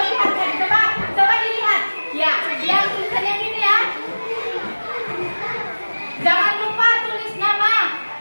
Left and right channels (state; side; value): inverted; both; correlation -1.00